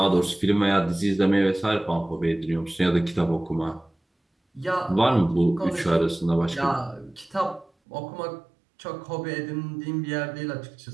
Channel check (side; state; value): left; drops out; at 7.7 s